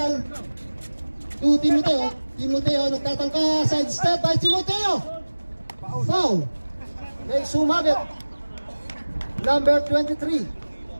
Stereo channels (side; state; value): both; inverted; correlation -1.00